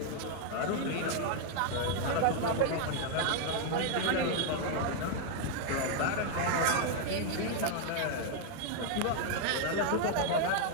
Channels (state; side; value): different; both; correlation 0.00